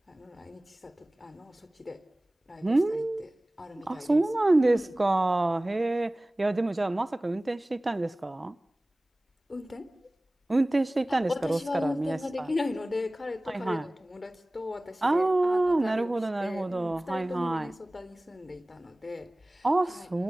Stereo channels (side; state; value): both; normal; correlation 0.98